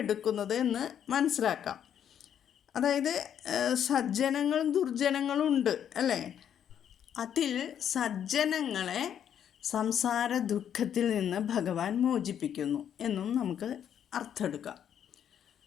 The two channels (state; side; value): quieter; right; 9.2 dB